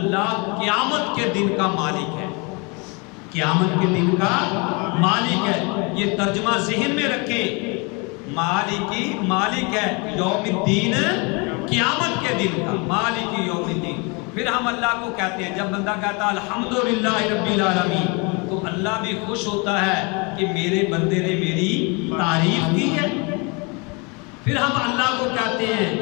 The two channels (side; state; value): right; quieter; 30.6 dB